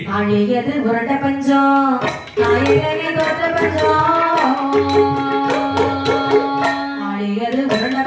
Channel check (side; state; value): both; identical; correlation 1.00